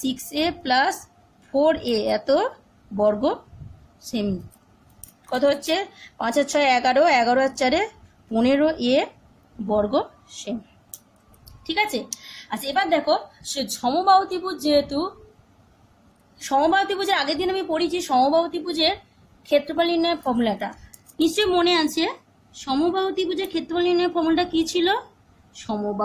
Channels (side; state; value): both; identical; correlation 1.00